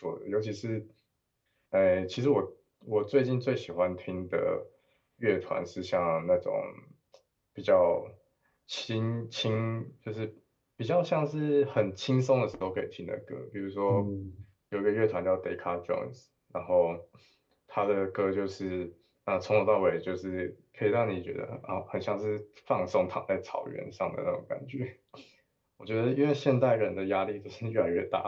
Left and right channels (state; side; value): identical; both; correlation 1.00